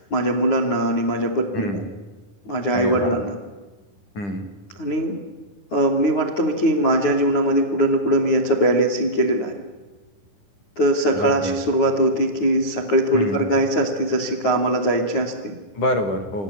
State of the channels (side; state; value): right; late; 9.5 ms